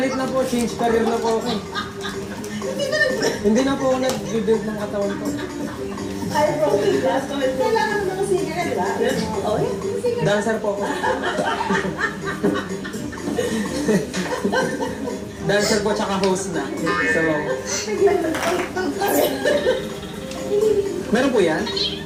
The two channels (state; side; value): identical; both; correlation 1.00